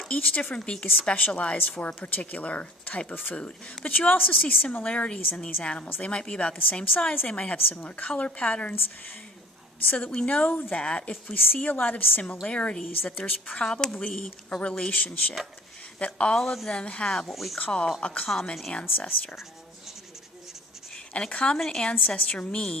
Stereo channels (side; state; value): both; normal; correlation 0.47